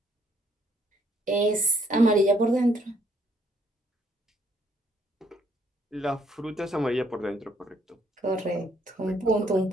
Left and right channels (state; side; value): normal; both; correlation 0.68